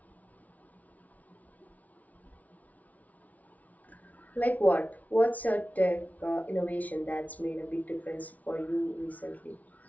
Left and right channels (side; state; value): right; late; 0.072 ms